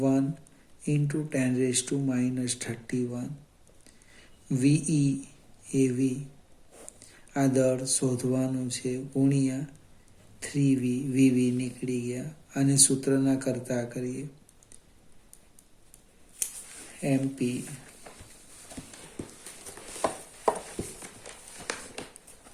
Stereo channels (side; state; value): both; identical; correlation 1.00